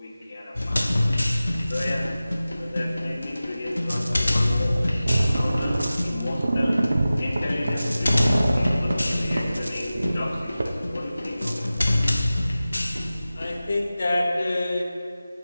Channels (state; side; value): inverted; both; correlation -0.96